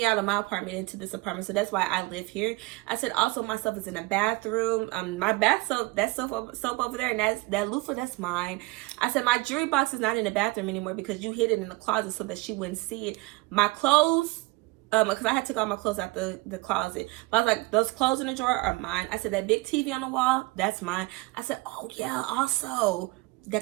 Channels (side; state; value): left; quieter; 23.1 dB